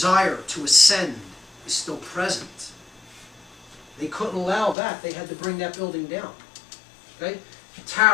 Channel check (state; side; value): drops out; right; at 4.8 s